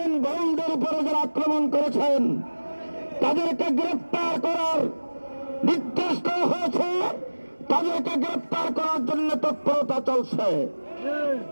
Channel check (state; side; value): inverted; both; correlation -1.00